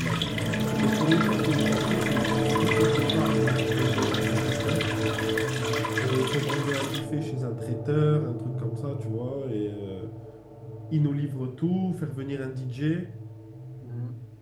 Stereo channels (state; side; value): identical; both; correlation 1.00